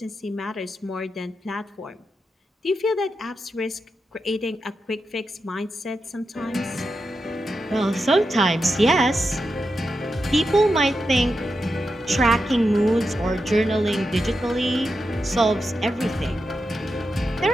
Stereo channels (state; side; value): normal; both; correlation 0.88